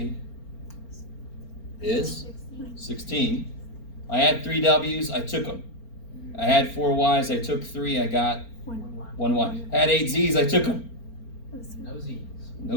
is 16. I had 3 W's, I took them. I had 4 Y's, I took 3, I got 1 Y. I had 8 Z's, I took them. No Z's.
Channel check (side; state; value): right; late; 4.4 ms